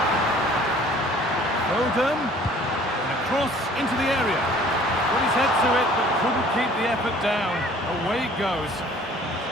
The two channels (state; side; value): normal; both; correlation 0.53